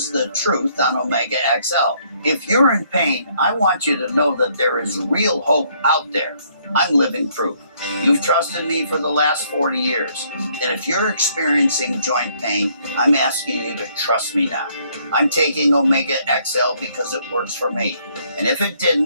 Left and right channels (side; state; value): both; inverted; correlation -0.67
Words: the truth on Omega XL. If you're in pain, I want you to know that there is real hope out there. I'm living proof. You've trusted me for the last 40 years. And if you're experiencing joint pain, I'm asking you to trust me now. I'm taking Omega XL because it works for me. And if it